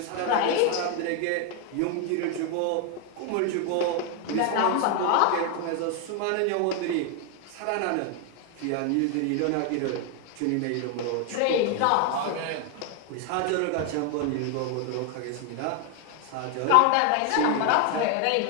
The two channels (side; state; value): both; different; correlation 0.01